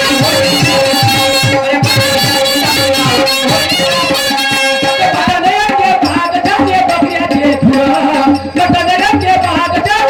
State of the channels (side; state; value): both; identical; correlation 1.00